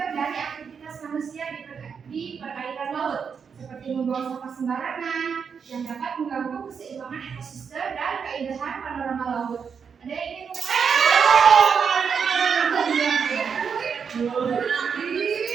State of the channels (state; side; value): quieter; left; 6.4 dB